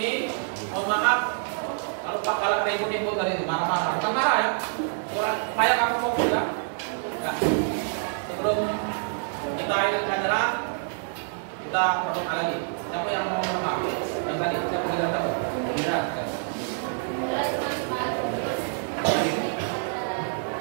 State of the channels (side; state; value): left; silent; 60 dB below the other